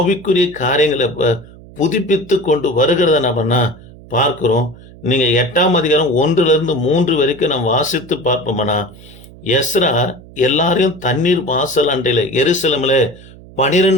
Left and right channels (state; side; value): noise; right; hum, 20 dB below the sound